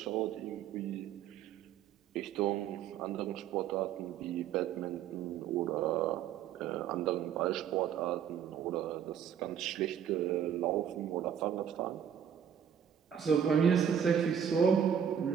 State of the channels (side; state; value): left; quieter; 8.6 dB